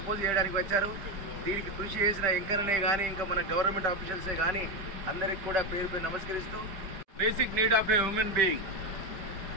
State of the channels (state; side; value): late; left; 5.1 ms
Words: చేయడానికి వచ్చారు. దీనికి కృషి చేసిన ఎంకరనే కానీ ఇంకా మన గవర్నమెంట్ ఆఫీషియల్సే కానీ అందరికి కూడా పేరు పేరు నమస్కరిస్తూ Basic need of a human being.